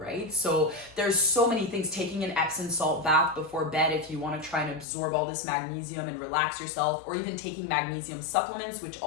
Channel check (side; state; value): right; drops out; at 4.9 s